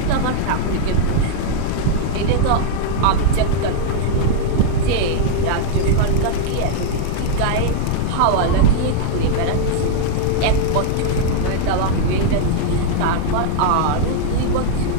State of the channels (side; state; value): both; different; correlation -0.01